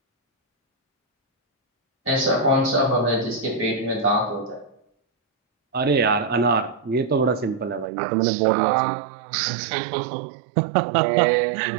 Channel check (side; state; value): left; drops out; at 7.9 s